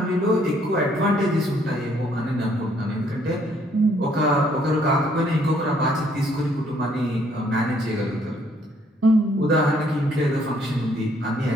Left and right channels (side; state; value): both; normal; correlation 0.66